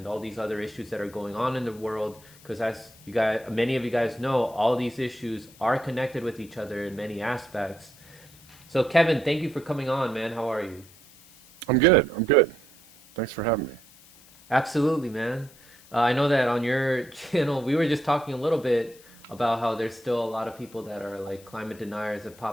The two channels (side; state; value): left; noise; hiss, 24 dB below the sound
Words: all these other issues that are going on in the world. Because as you guys, many of you guys know, all these issues are connected with each other in many aspects. So, Kevin, thank you for coming on, man. How are you? I'm good. I'm good. Thanks for having me. Absolutely, man. I know that on your channel, we were just talking a little bit about how there's still a lot of people that are like climate deniers that